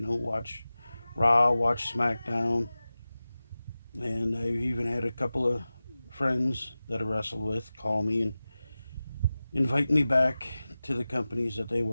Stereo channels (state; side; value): inverted; both; correlation -0.96